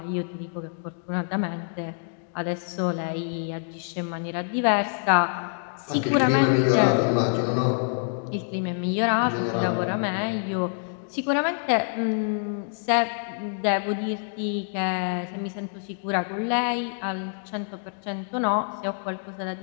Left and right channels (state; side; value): silent; right; 61 dB below the other